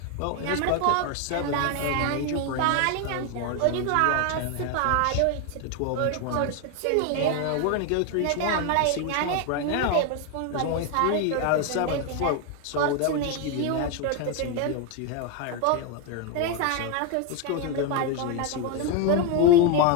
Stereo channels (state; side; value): different; both; correlation 0.01